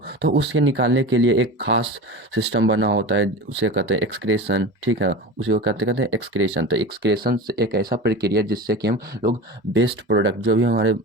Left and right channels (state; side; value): normal; both; correlation 0.31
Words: उसके निकालने के लिए एक खास सिस्टम बना होता है, उसे कहते हैं एक्सक्रेशन, ठीक है? उसे वो कहते कहते हैं एक्सक्रेशन। तो एक्सक्रेशन एक ऐसा प्रक्रिया जिससे कि हम लोग बेस्ट प्रोडक्ट, जो भी हमारे